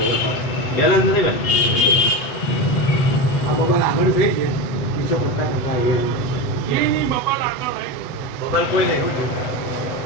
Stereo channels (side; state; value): right; late; 8.1 ms